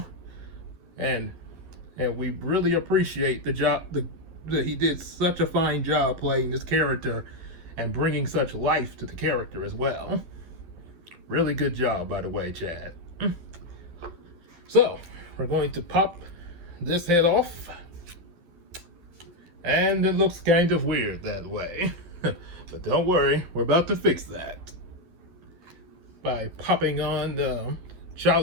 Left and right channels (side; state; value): left; late; 11 ms